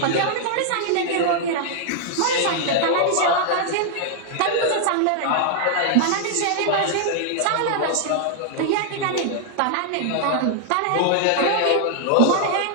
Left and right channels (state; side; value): different; both; correlation 0.00